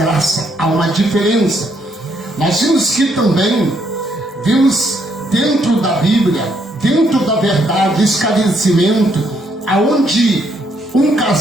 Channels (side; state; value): both; normal; correlation 0.72